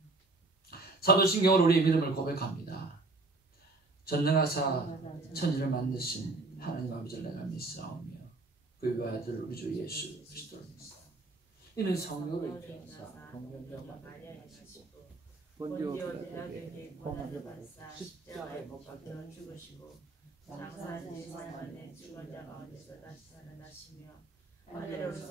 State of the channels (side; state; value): left; quieter; 3.2 dB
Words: 사도신경으로 우리의 믿음을 고백합니다. 전능하사 천지를 만드신 하나님 아버지를 내가 믿사오며 그의 아들 우리 주 예수 그리스도를 믿사오며 이는 성령을 입혀사 동명령과 본디오 빌라도에게 고난을 받으사 십자가에 못 박혀 죽으시고 장사한 지 3일 만에 죽은 자 가운데서 다시 살아나시며